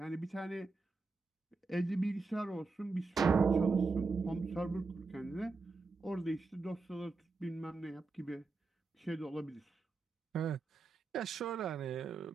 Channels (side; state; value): left; quieter; 4.0 dB